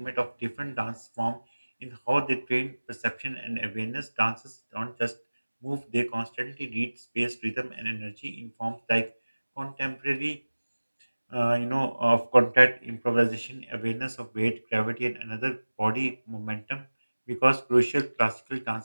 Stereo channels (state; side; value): inverted; both; correlation -1.00